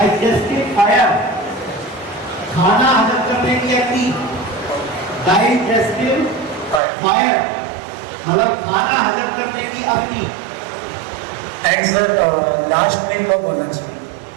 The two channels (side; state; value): left; drops out; at 6.8 s